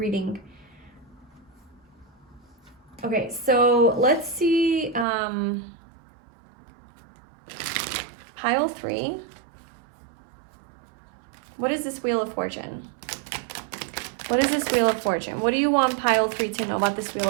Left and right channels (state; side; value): drops out; left; at 5.1 s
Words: Okay, so let's see pile 3. What is this Wheel of Fortune? What is this Wheel of Fortune? What do you want pile 3 to know about this Wheel